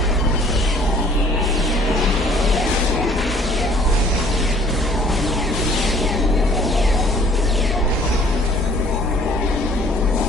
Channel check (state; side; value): normal; both; correlation 0.55